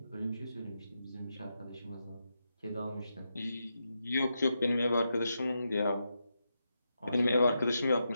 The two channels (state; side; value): inverted; both; correlation -0.85